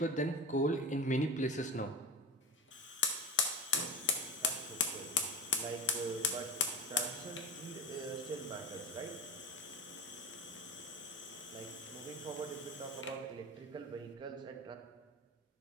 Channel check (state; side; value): normal; both; correlation 0.27